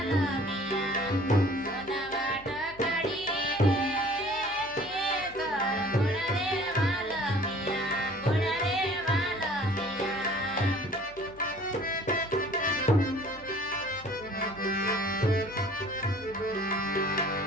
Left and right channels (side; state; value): left; noise; hum, 22 dB below the sound